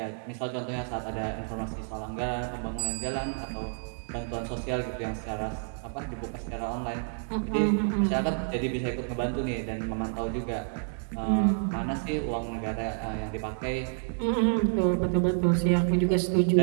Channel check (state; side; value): silent; left; 58 dB below the other